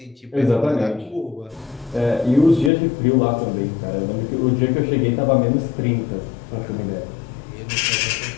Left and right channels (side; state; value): right; drops out; at 2.7 s